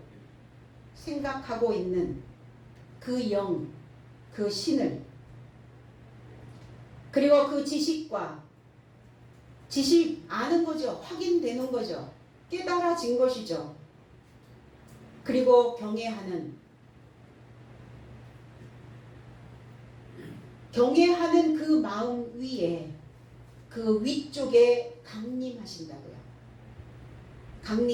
생각하고 있는 그 영, 그 신을 그리고 그 지식 아는 거죠. 확인되는 거죠. 깨달아진 것이죠. 그리고 경외하는 그 마음 위에 그 위쪽에 강림하신다고요.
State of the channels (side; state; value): both; identical; correlation 1.00